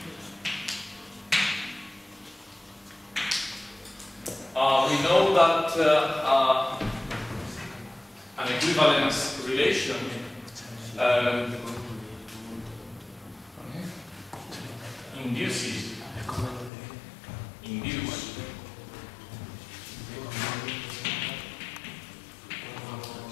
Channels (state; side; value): drops out; right; at 16.7 s